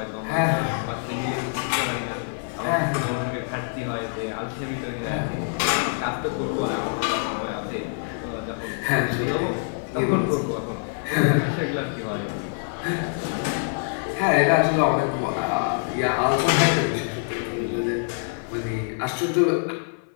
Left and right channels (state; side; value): silent; right; 62 dB below the other